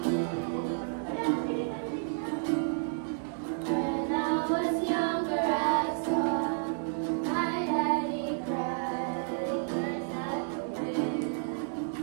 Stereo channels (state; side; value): silent; left; digital silence